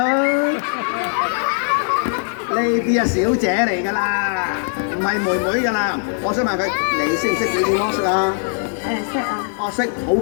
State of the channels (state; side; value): silent; right; 57 dB below the other